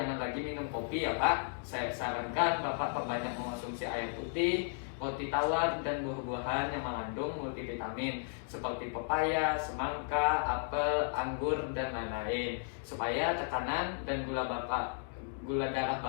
lagi minum kopi ya Pak. Saya sarankan Bapak perbanyak mengonsumsi air putih, roti tawar, dan buah-buahan yang mengandung multivitamin seperti pepaya, semangka, apel, anggur, dan lain-lain, supaya tekanan dan gula darah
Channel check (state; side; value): silent; right; digital silence